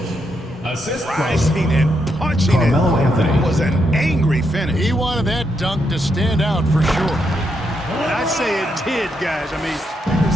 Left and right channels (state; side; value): normal; both; correlation 0.80